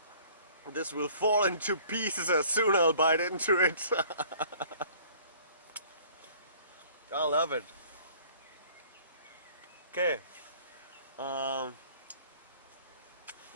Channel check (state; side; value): inverted; both; correlation -0.52